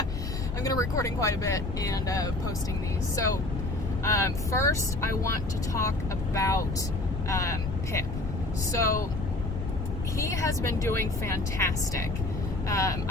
I'm going to be recording quite a bit and posting these. So first I want to talk about Pip. So he has been doing fantastic.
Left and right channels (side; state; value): left; noise; rumble, 5 dB below the sound